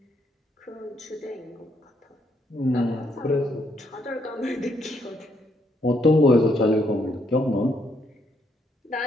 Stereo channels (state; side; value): normal; both; correlation 0.73